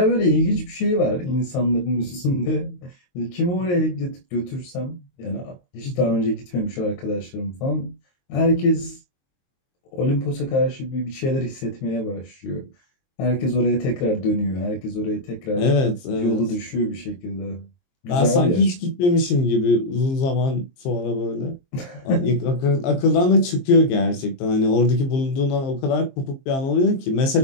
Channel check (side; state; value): right; late; 23 ms